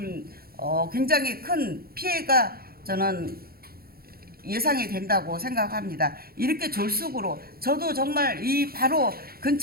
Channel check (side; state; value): left; late; 0.44 ms